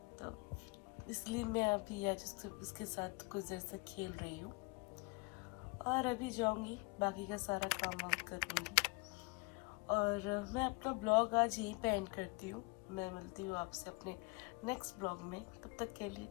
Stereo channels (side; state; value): right; quieter; 28.6 dB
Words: तो इसलिए मैं अभी आज उसके साथ कुछ देर से खेल रही हूँ और अभी जाऊँगी बाकी का सारा काम वाम करूँगी। और मैं अपना ब्लॉग आज यहीं पे एंड करती हूँ। मैं मिलती हूँ आपसे अपने नेक्स्ट ब्लॉग में, तब तक के लिए